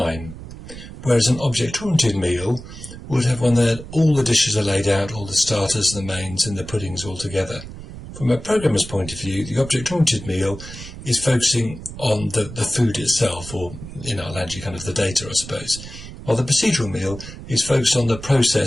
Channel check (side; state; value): right; noise; rumble, 13 dB below the sound